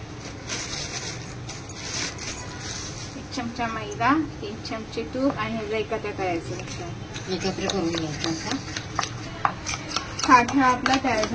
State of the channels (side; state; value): both; identical; correlation 1.00